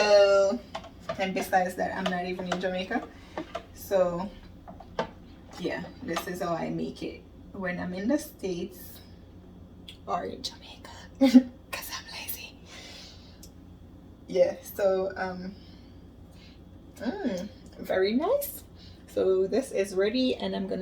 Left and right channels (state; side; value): identical; both; correlation 1.00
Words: and besides that, I'm not even in Jamaica, so yeah, this is how I make it when I'm in the States or in Jamaica, because I'm lazy. Yeah, so very nice. So this is ready, and I'm